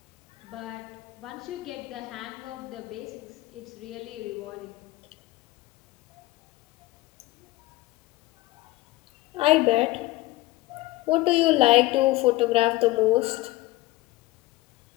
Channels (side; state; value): right; quieter; 19.1 dB